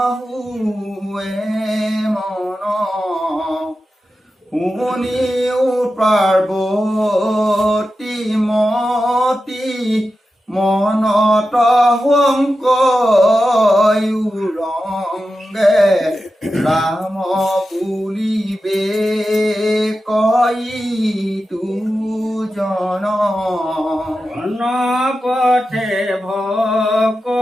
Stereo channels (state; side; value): normal; both; correlation 0.91